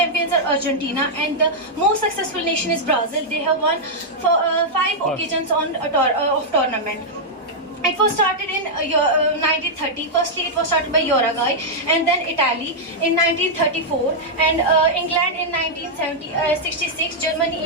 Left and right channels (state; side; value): normal; both; correlation -0.05